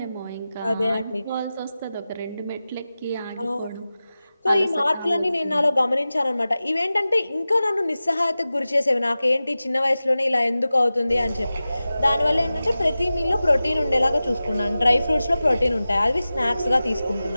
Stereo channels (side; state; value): both; inverted; correlation -0.95